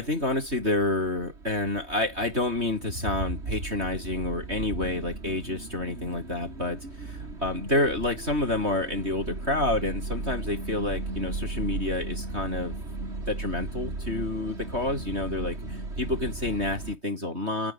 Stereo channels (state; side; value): late; left; 3.2 ms